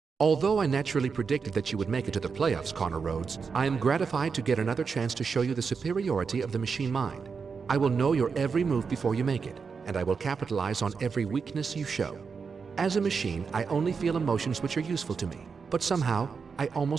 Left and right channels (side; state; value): left; quieter; 5.4 dB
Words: Although I naturally predicted that you would make it to the playoffs, Connor Rhoades, I am gratified to get another chance to show you the superiority of the machine mind. I will know your every move before you make it, and I will capitalize on every weakness you show. As a machine, I only feel emotions which are useful to me, but somehow, I